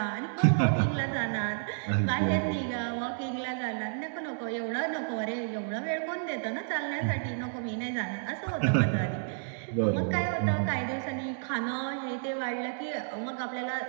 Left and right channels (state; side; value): silent; left; digital silence